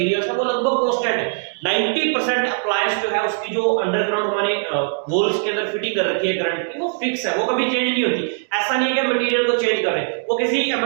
है वो लगभग कांस्टेंट है। 90% अप्लायंस जो है उसकी जो अंडरग्राउंड हमारे वॉल्स के अंदर फिटिंग कर रखी है करंट की, वो फिक्स है, वो कभी चेंज नहीं होती। ऐसा नहीं है कि मटेरियल को चेंज कर रहे हैं, वो किसी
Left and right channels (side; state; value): left; silent; digital silence